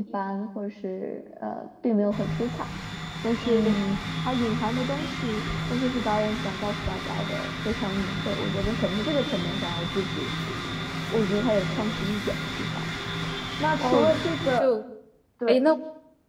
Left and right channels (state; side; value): identical; both; correlation 1.00